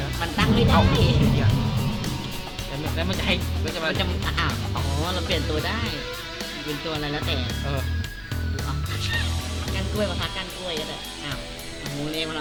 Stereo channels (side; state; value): both; identical; correlation 1.00